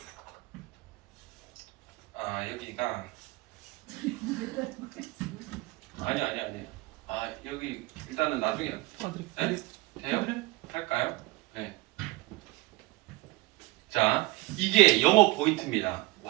여기가 아니 여기 일단은 나중에 네? 돼요? 할까요? 네. 자, 이게 영업 포인트입니다.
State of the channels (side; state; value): left; quieter; 21.6 dB